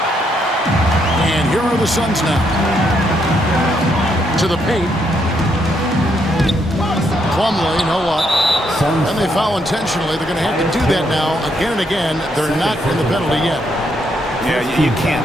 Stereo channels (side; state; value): both; normal; correlation 0.75